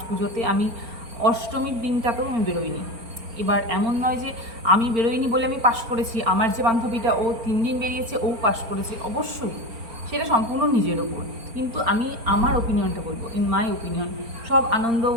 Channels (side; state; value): left; late; 4.4 ms